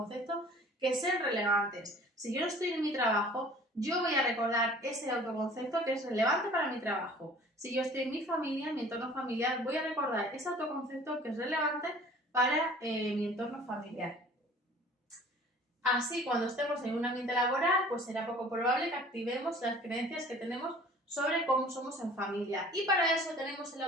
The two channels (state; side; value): normal; both; correlation 0.48